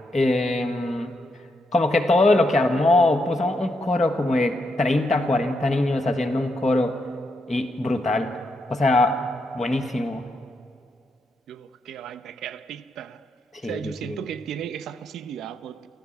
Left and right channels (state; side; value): normal; both; correlation 0.81